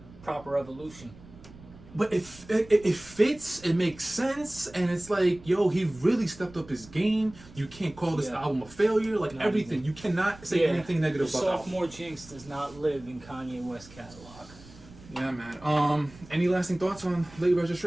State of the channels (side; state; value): right; noise; rumble, 21 dB below the sound